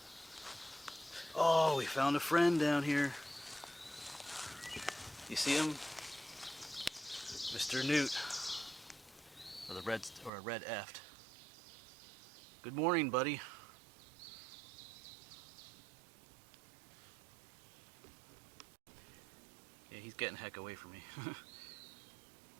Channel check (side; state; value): left; drops out; at 10.3 s